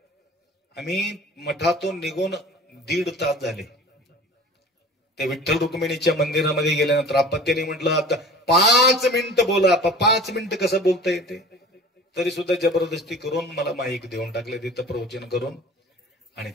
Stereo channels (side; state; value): both; normal; correlation 0.42